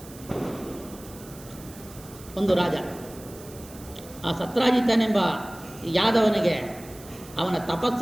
ಒಂದು ರಾಜ. ಆ ಸತ್ರಾಜಿತನೆಂಬ ಯಾದವನಿಗೆ ಅವನ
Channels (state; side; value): noise; right; hiss, 19 dB below the sound